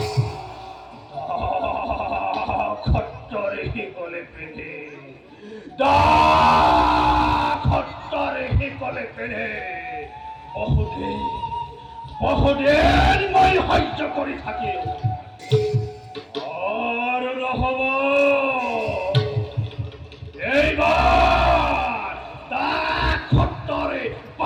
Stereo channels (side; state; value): both; identical; correlation 1.00